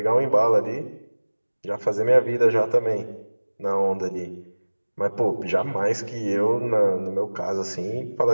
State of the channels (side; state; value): both; inverted; correlation -1.00